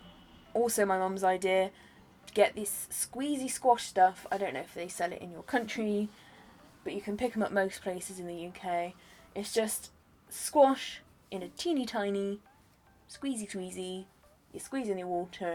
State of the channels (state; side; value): identical; both; correlation 1.00